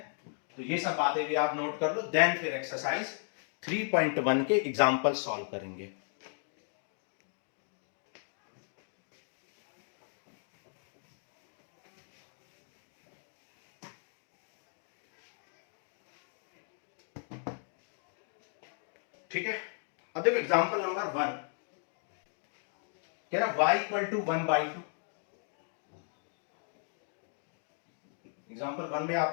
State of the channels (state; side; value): silent; right; 54 dB below the other